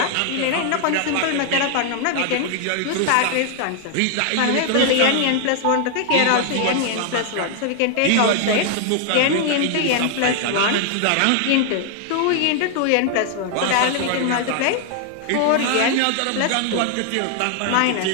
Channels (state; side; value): different; both; correlation 0.00